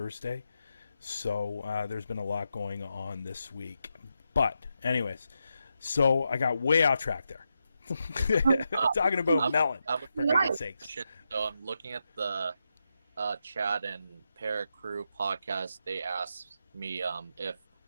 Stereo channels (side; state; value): both; inverted; correlation -0.86